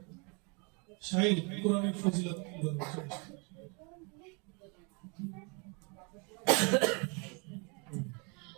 শাইল কোরআনের ফজিলত বলবো।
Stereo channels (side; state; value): left; quieter; 33.0 dB